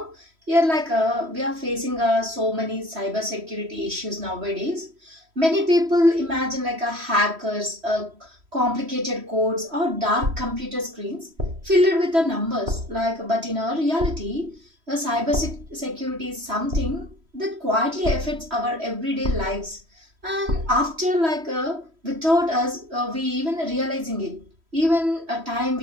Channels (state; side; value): late; left; 3.1 ms